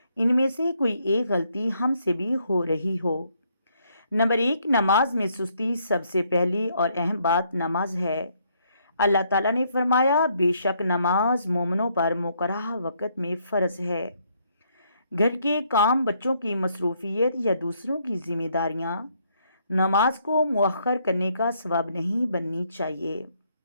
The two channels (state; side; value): inverted; both; correlation -0.71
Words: ان میں سے کوئی ایک غلطی ہم سے بھی ہو رہی ہو۔ نمبر 1، نماز میں سستی۔ سب سے پہلی اور اہم بات نماز ہے۔ اللہ تعالیٰ نے فرمایا، بے شک نماز مومنوں پر مقررہ وقت میں فرض ہے۔ گھر کے کام، بچوں کی مصروفیت یا دوسروں کی ذمہ داریاں نماز کو مؤخر کرنے کا سبب نہیں بننی چاہیے۔